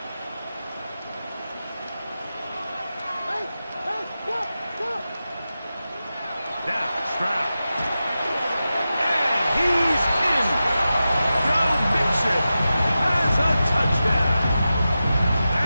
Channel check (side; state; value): both; inverted; correlation -0.93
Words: Now, Stroud. And he's in. Joe Mixon has a touchdown.